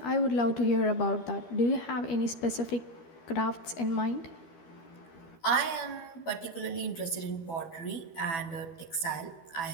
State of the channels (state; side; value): late; right; 12 ms